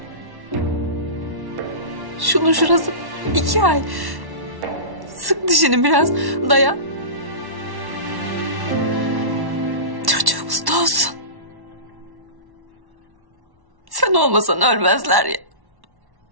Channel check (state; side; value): late; left; 1.1 ms